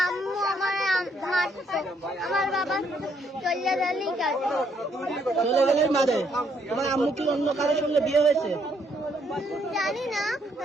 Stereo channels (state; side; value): normal; both; correlation 0.71